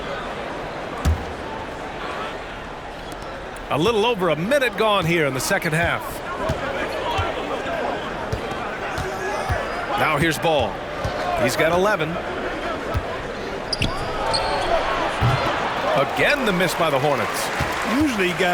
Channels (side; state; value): both; identical; correlation 1.00